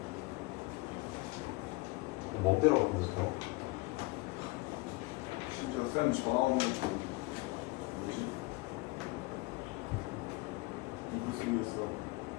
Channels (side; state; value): right; quieter; 23.6 dB